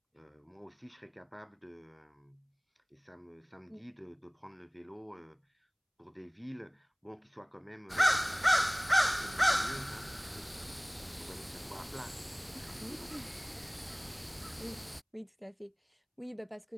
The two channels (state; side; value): identical; both; correlation 1.00